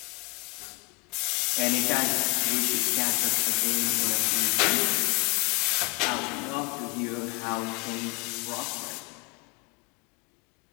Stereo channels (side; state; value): right; quieter; 26.5 dB